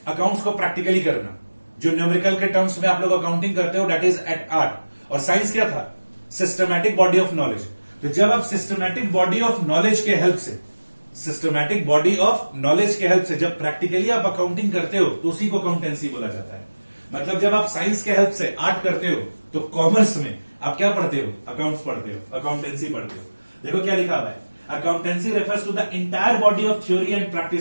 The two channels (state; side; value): inverted; both; correlation -1.00